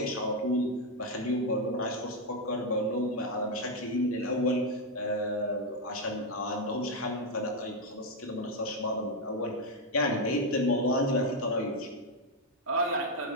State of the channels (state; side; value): normal; both; correlation 0.03